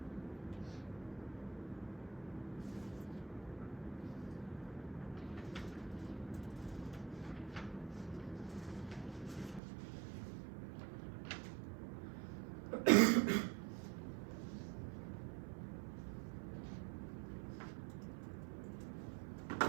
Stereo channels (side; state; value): left; drops out; at 9.6 s